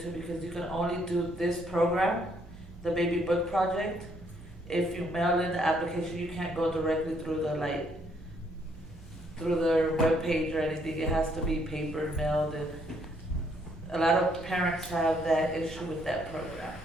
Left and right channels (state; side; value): normal; both; correlation 0.69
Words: because you can only do this program, the baby book project. If you mail in the application, you can't go directly through through their webpage or anything. It has to be paper mailed, and a lot of parents have that issue with that program.